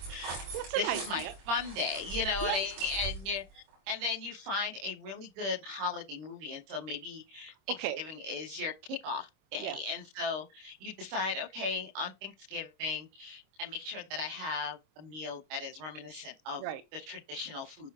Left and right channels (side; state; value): left; late; 26 ms